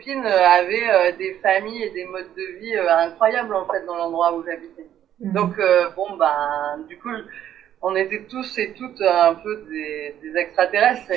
avaient des familles et des modes de vie incroyables, en fait, dans l'endroit où j'habitais. Donc, bon, ben, du coup, on était tous et toutes un peu des extraterrestres.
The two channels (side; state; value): left; quieter; 10.8 dB